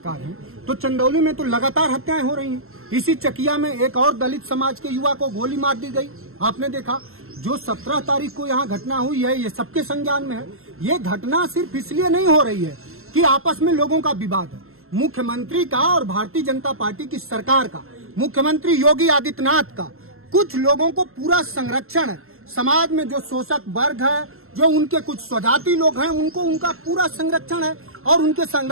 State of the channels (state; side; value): late; left; 0.62 ms